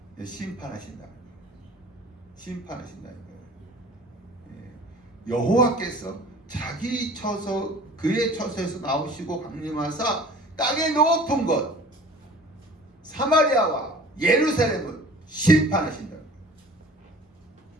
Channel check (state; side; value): normal; both; correlation 0.45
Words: 심판하신다. 여호와께서 그의 처소에서 나오시고 강림하사 땅의 높은 곳 사마리아와 예루살렘을 심판하신다.